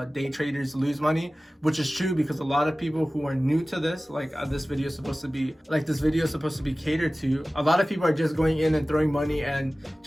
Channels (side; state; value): both; normal; correlation 0.97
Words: day traders lose money, which is true, because a lot of people who are new to this, like this video is supposed to be catered to. A lot of people are just going in and throwing money and